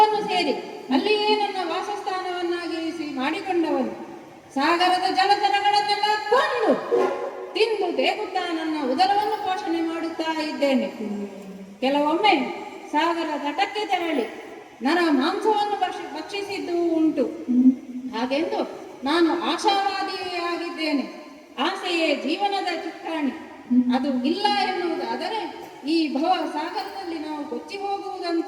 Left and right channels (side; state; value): both; identical; correlation 1.00